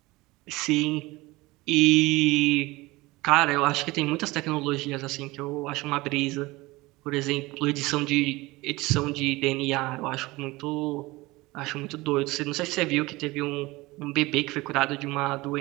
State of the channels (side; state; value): left; quieter; 21.2 dB